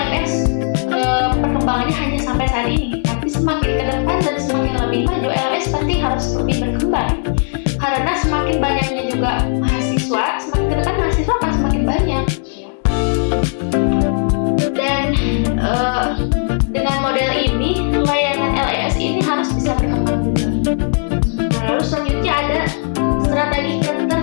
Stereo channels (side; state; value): right; silent; 60 dB below the other